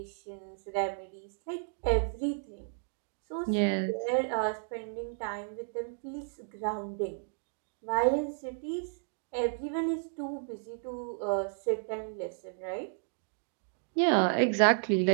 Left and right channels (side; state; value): left; silent; digital silence